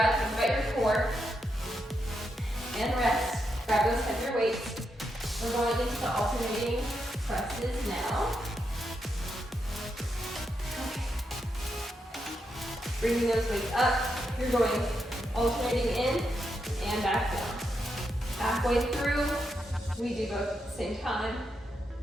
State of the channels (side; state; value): both; normal; correlation 0.83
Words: think about your core, and rest. Grab those heavier weights. We're going into the alternating presses now. Okay. Bringing those weights up, you're going alternating in and back down. Halfway through, we do both at the same time.